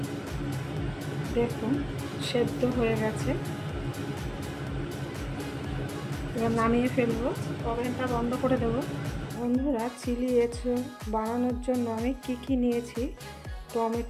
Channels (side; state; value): both; identical; correlation 1.00